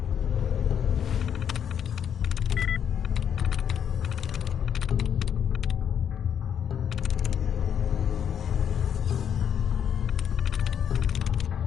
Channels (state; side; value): quieter; right; 8.5 dB